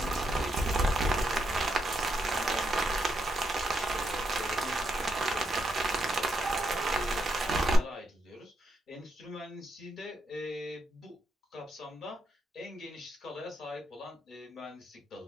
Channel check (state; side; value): normal; both; correlation 0.80